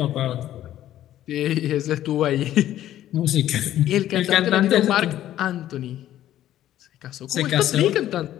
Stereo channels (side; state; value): right; quieter; 12.6 dB